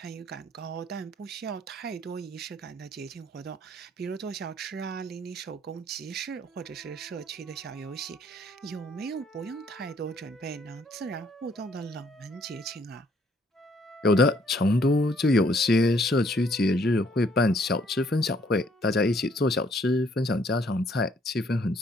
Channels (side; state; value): both; normal; correlation 0.65